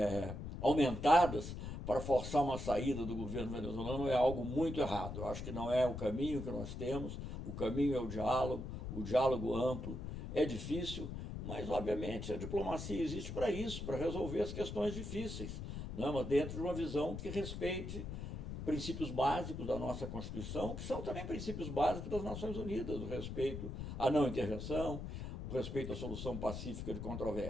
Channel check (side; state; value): left; noise; rumble, 6 dB below the sound